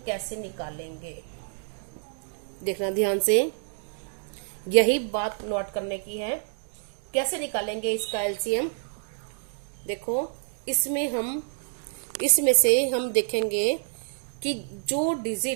कैसे निकालेंगे, देखना ध्यान से, यही बात नोट करने की है। कैसे निकालेंगे इसका एलसीएम, देखो इसमें से हम देखेंगे कि जो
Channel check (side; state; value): left; silent; digital silence